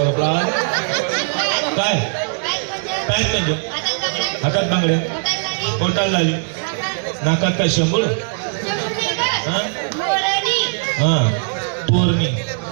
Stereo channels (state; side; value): silent; left; digital silence